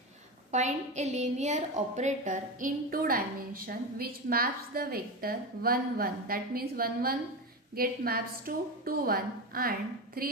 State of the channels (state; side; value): normal; both; correlation 0.19